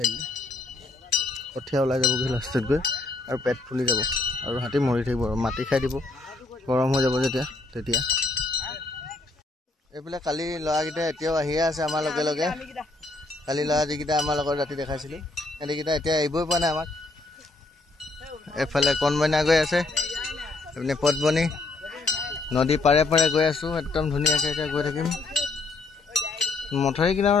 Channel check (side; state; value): right; quieter; 3.3 dB